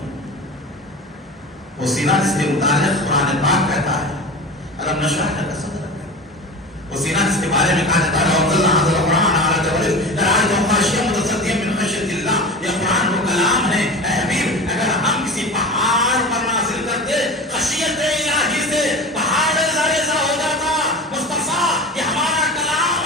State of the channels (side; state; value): both; normal; correlation 0.32